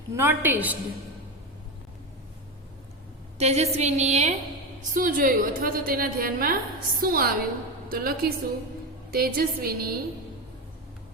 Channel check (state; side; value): normal; both; correlation 0.17